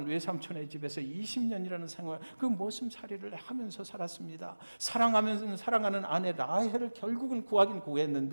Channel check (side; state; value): both; inverted; correlation -1.00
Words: 외삼촌의 집에서 20년이라는 생활, 그 머슴살이를 하면서 살았습니다. 사랑하는 아내 라헬을 결국은 구하긴